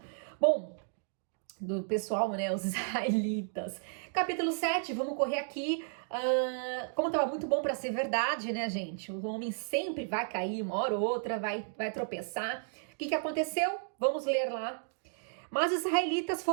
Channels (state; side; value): silent; left; digital silence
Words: Bom, do pessoal, né, os israelitas. Capítulo 7, vamos correr aqui. Como tava muito bom para ser verdade, né, gente? O homem sempre vai cair, uma hora ou outra, vai tropeçar. O que aconteceu? Vamos ler lá. Mas os israelitas